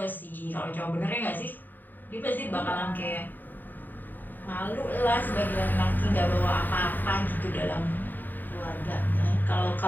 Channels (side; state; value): right; late; 0.090 ms